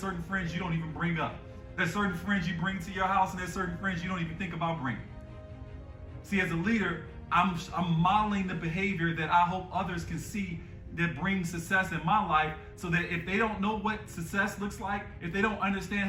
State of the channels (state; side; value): identical; both; correlation 1.00